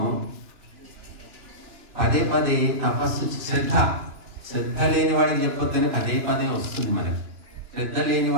పదే పదే తపస్సు, శ్రద్ధ లేని వాడికి చెప్పొద్దని పదే వస్తుంది మనకి. శ్రద్ధ లేని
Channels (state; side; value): late; left; 2.9 ms